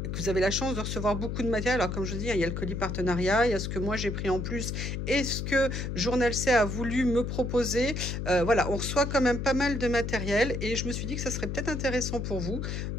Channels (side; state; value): left; noise; hum, 3 dB below the sound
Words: vous avez la chance de recevoir beaucoup de matériel, alors comme je vous dis, il y a le colis partenariat, il y a ce que moi j'ai pris en plus et ce que Journal C a voulu me proposer. Voilà, on reçoit quand même pas mal de matériel et je me suis dit que ça serait peut-être intéressant pour vous